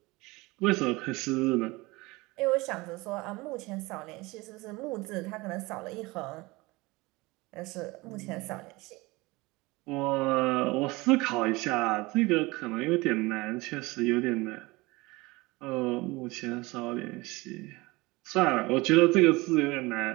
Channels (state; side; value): quieter; left; 22.7 dB